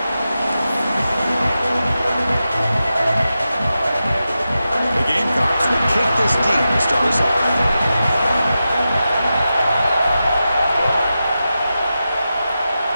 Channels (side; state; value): both; inverted; correlation -0.91